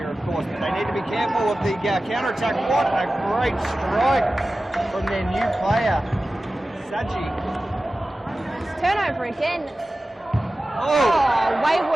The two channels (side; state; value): both; normal; correlation 0.95